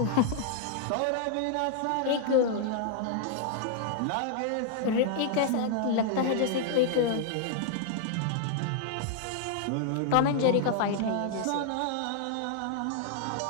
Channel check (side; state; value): both; different; correlation 0.00